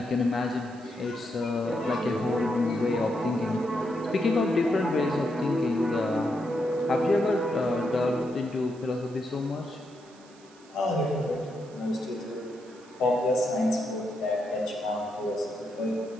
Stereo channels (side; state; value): right; noise; hiss, 26 dB below the sound